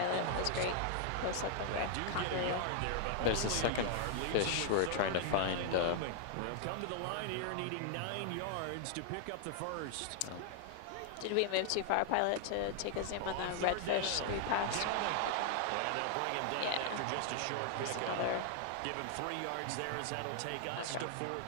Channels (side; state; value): both; different; correlation 0.00